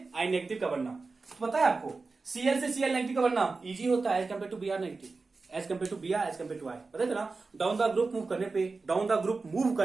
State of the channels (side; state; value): left; quieter; 4.0 dB